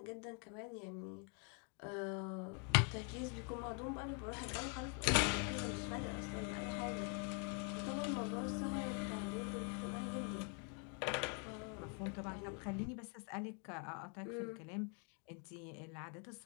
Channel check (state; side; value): quieter; right; 39.3 dB